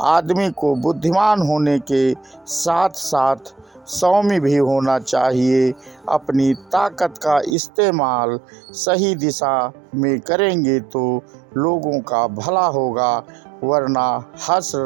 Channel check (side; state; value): left; drops out; at 7.6 s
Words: आदमी को बुद्धिमान होने के साथ साथ सौम्य भी होना चाहिए। अपनी ताकत का इस्तेमाल सही दिशा में करेंगे तो लोगों का भला होगा, वरना हर्ष